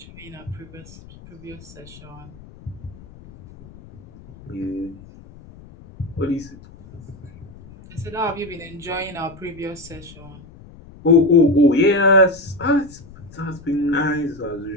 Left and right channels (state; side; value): noise; left; rumble, 20 dB below the sound